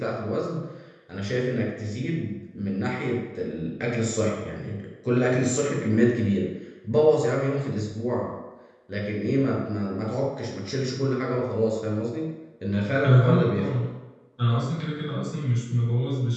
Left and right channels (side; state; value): both; identical; correlation 1.00